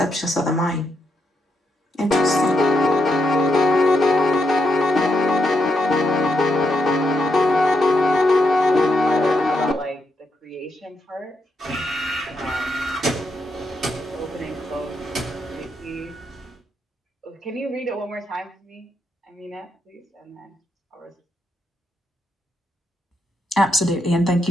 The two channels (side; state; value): both; normal; correlation 0.81